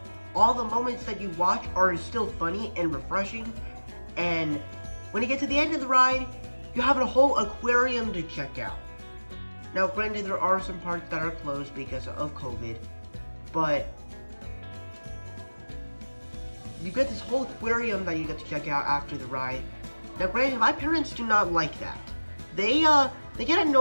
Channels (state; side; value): inverted; both; correlation -1.00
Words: all the moments that you watch are still funny and refreshing. And when you get to the end of the ride, you have a whole aquarium to check out. Now, granted, there are some parts that are closed because of COVID, but you get this whole aquarium that you get to check out after the ride. Now, granted, my parents do not like that. They get